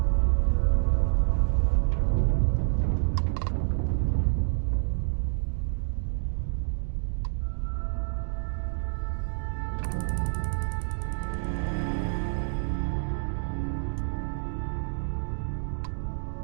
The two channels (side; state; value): left; silent; digital silence